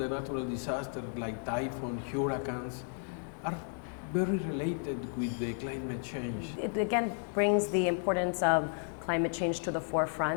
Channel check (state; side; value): silent; right; 56 dB below the other